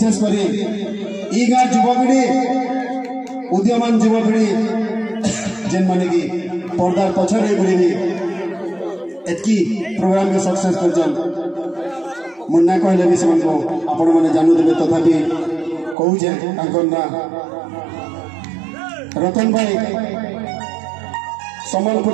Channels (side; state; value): left; drops out; at 16.0 s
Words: कर गाँव युवपीढ़ी उद्यमान युवपीढ़ी जेन माने कि पर्दार पछरे बुढ़ी एतकी प्रोग्राम के सक्सेस कर मुन्ना कहले भी से आपण मैंने जानू देवे तथापि कहूचे ना रतन भाई